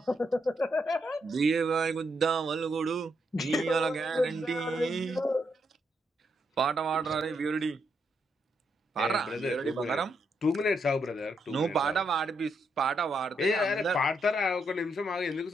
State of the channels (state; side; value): normal; both; correlation 0.79